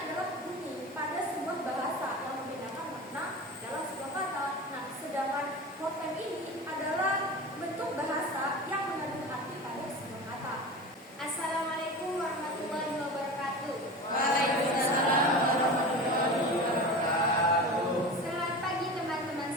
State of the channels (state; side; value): normal; both; correlation 0.30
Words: bunyi pada sebuah bahasa yang membedakan makna dalam sebuah kata. Nah, sedangkan morfem ini adalah bentuk bahasa yang mengandung arti pada sebuah kata. Assalamualaikum warahmatullahi wabarakatuh. Waalaikumsalam warahmatullahi wabarakatuh. Selamat pagi teman-teman